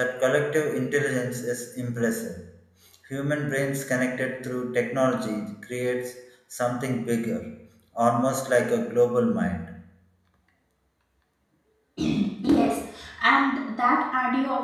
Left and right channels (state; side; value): identical; both; correlation 1.00